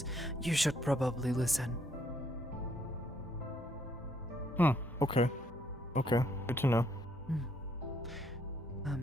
you should probably listen. Okay. Okay, good to know.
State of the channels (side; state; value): both; normal; correlation 0.70